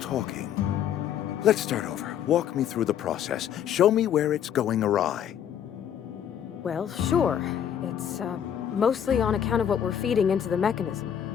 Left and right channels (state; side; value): quieter; right; 9.3 dB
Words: Let's start over. Walk me through the process. Show me where it's going awry. Well, sure. It's, mostly on account of what we're feeding into the mechanism.